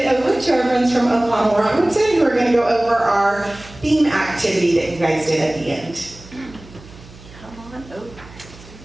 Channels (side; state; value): right; noise; hum, 20 dB below the sound